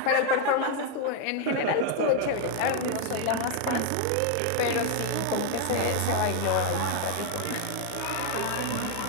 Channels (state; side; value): different; both; correlation 0.01